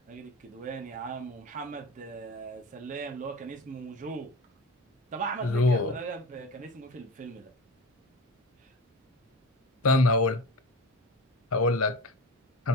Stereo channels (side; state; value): both; normal; correlation 0.30